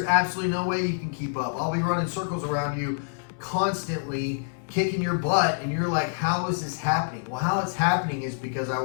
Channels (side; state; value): right; silent; 60 dB below the other